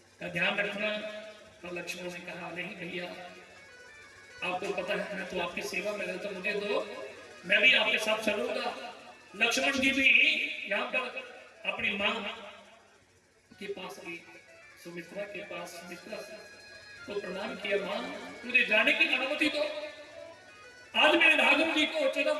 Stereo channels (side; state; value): both; identical; correlation 1.00